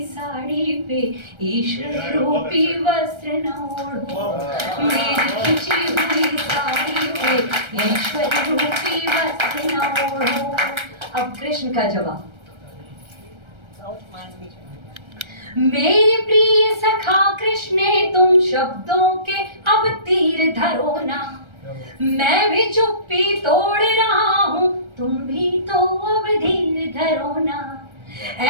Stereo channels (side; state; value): left; late; 1.3 ms